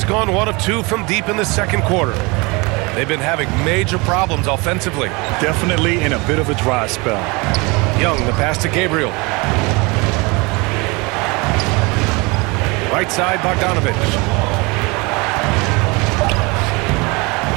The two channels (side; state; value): left; quieter; 26.7 dB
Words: gone 1 of 2 from deep in the second quarter. They've been having major problems offensively. Definitely in a bit of a dry spell. Young, the pass to Gabriel. Right side, Bogdanovich.